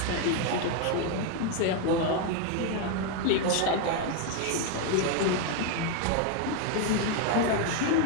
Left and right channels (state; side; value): different; both; correlation 0.01